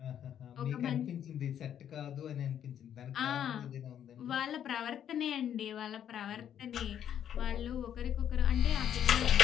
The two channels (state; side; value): quieter; right; 9.7 dB